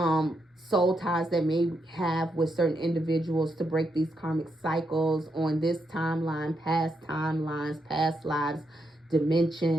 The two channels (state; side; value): normal; both; correlation 0.81